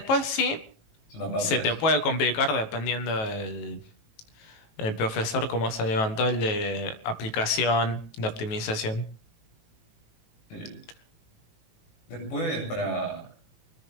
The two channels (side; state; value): right; late; 18 ms